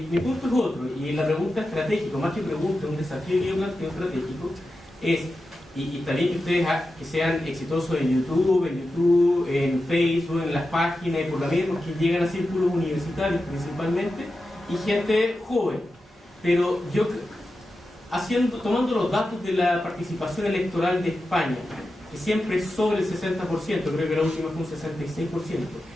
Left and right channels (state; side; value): normal; both; correlation 0.91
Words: punto es otro, y la pregunta estratégica, más que pregunta, un desafío que yo planteo estratégico, es, y está bien que ustedes que sean exitosos en YouTube, en Facebook, en las páginas, y por la vida, porque llegan a círculos universitarios principalmente, y gente joven. Pero yo, tomando los datos de la participación electoral de España, que siempre es sobre el 60%, creo que la última fue un 66%.